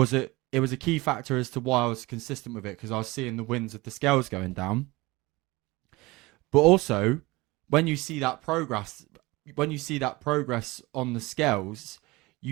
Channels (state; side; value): quieter; left; 22.1 dB